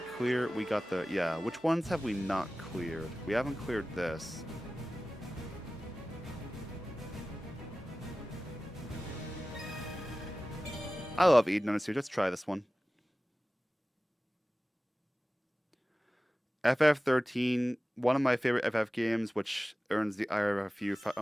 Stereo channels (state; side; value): normal; both; correlation 0.96